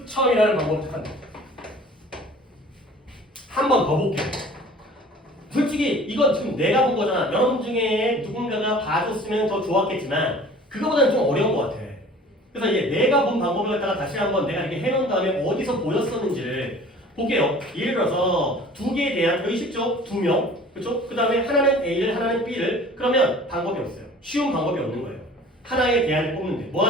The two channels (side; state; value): both; normal; correlation 0.46